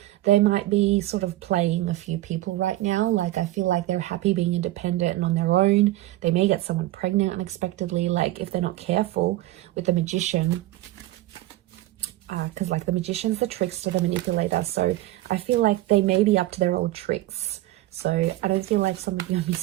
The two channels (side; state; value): left; quieter; 16.2 dB